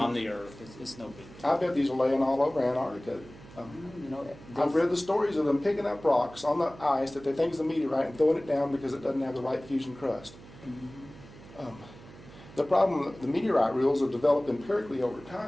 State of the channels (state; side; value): noise; right; hum, 19 dB below the sound